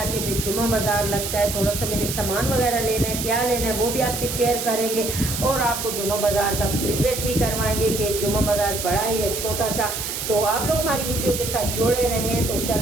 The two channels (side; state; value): right; noise; hiss, 4 dB below the sound